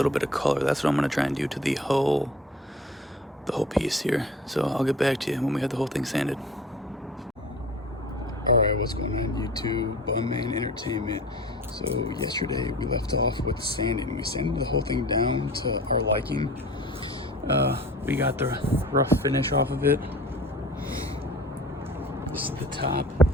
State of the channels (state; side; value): normal; both; correlation 0.42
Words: bit of color. That's what I'm gonna try and do to the whole piece here. So I'll get back to you when we have the whole thing sanded. Alright, what's going on YouTube? Bunman Entertainment. So yesterday we left off with sanding. We sanded the whole thing down to our liking. We got the rough finish off of it. This is the top.